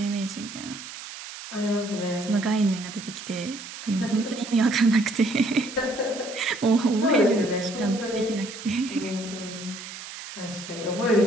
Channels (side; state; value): right; noise; hiss, 12 dB below the sound